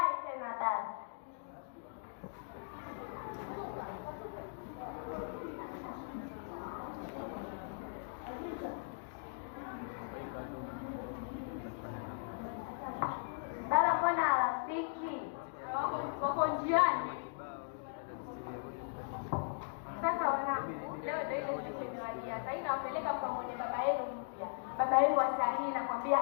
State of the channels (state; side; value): silent; right; digital silence